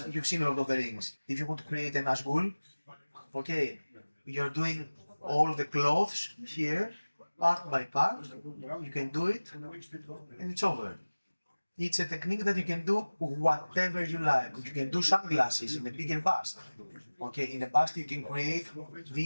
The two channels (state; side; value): inverted; both; correlation -1.00